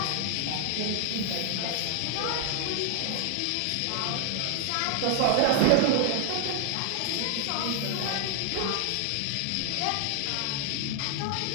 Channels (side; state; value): both; different; correlation 0.00